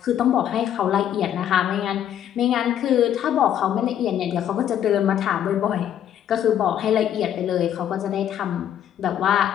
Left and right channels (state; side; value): quieter; right; 10.3 dB